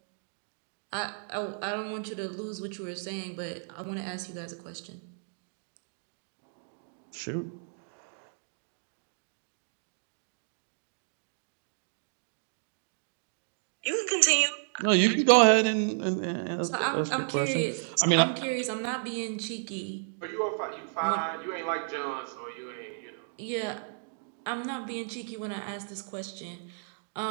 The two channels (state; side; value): silent; left; digital silence